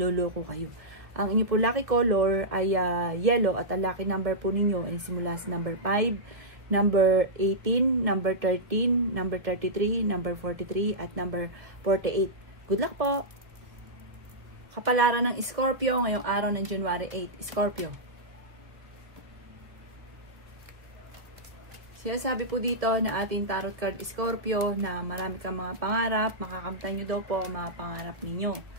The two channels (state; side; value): late; left; 1.0 ms